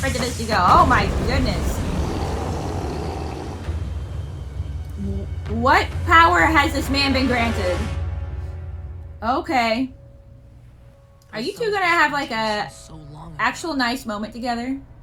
this to go. Oh my goodness. What power has this man been granted? Okay. Are you two gonna have like a actual nice moment together?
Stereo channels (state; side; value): identical; both; correlation 1.00